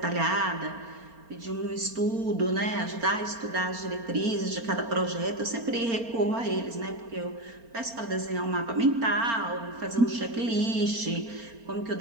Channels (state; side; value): late; left; 4.3 ms